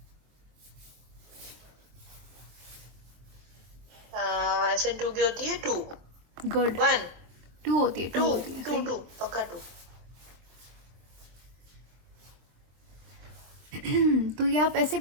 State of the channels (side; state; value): left; late; 24 ms